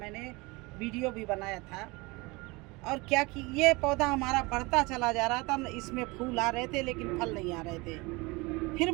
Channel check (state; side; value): quieter; left; 24.7 dB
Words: वीडियो भी बनाया था। और क्या कि ये पौधा हमारा बढ़ता चला जा रहा था, इसमें फूल आ रहे थे लेकिन फल नहीं आ रहे थे। फिर